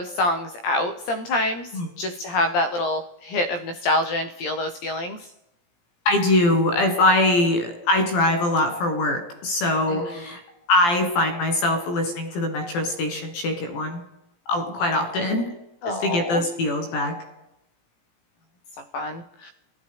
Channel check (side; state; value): right; late; 17 ms